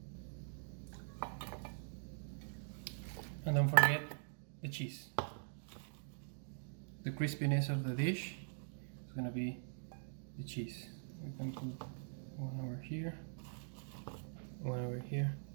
And don't forget the cheese. The crispiness of the dish is gonna be the cheese. We can put one over here, one over here.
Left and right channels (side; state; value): left; silent; digital silence